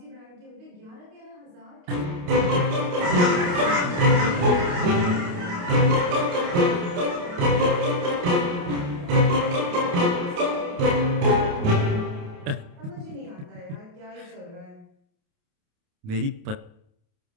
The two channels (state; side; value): late; left; 28 ms